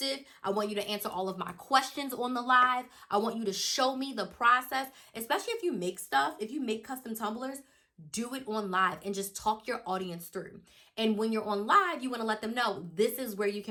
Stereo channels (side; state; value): both; identical; correlation 1.00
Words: I want you to answer all of my questions on the live. I want you to show me the process, especially if you make stuff, if you make custom tumblers. Do it on live and just talk your audience through. And when you're on live, you want to let them know this is where you